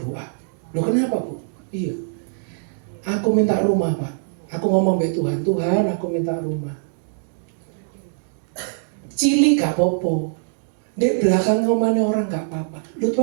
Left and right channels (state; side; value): silent; left; digital silence